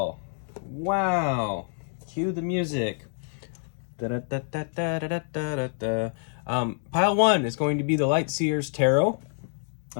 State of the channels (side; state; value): right; silent; digital silence